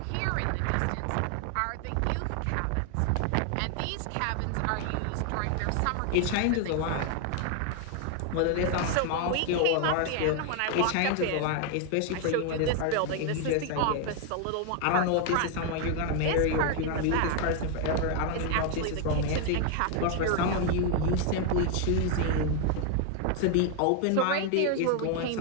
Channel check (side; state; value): both; different; correlation 0.01